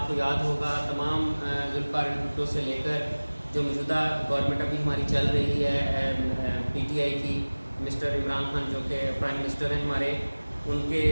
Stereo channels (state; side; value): inverted; both; correlation -1.00